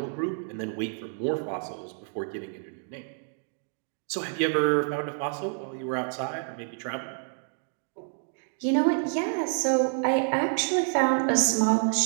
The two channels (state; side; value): silent; left; 59 dB below the other